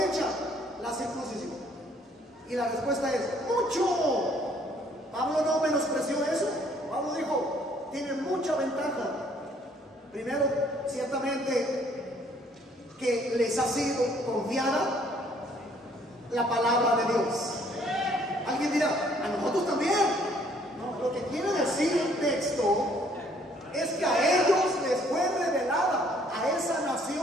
la circuncisión? Y la respuesta es: mucho. Pablo no menospreció eso. Pablo dijo: tiene mucha ventaja. Primero, ciertamente, que les ha sido confiada la palabra de Dios. Alguien dirá: a nosotros también. No, lo que quiere decir el texto es que a ellos les fue revelada, a esa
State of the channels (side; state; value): both; normal; correlation 0.62